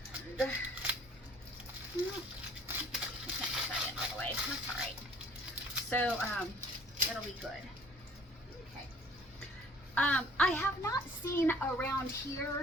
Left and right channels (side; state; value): both; normal; correlation 0.54